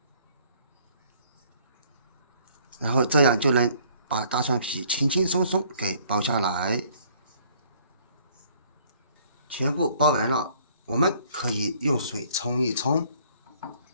然後这樣就能把大蒜皮輕輕鬆鬆給剥下來。全部剥完了，我們可以用水沖一沖，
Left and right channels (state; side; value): inverted; both; correlation -0.60